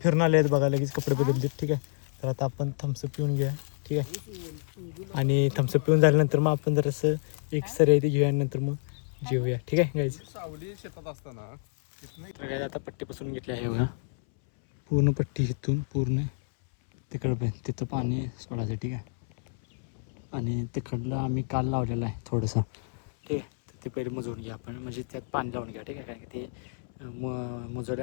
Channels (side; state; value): right; silent; 59 dB below the other